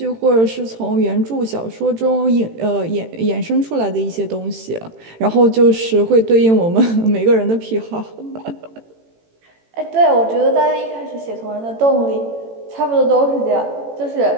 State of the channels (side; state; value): left; late; 18 ms